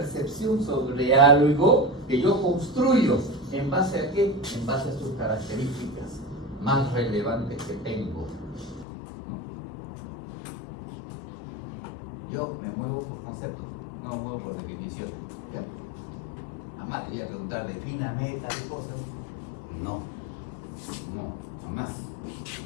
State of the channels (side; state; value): right; drops out; at 8.8 s